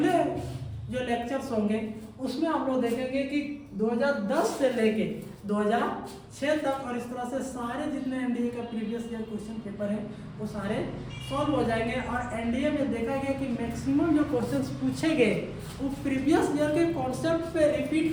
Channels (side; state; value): both; identical; correlation 1.00